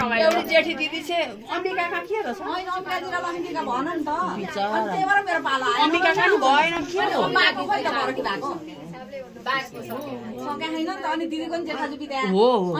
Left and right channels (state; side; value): identical; both; correlation 1.00